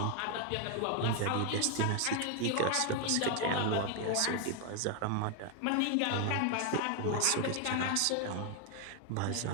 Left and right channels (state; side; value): different; both; correlation 0.01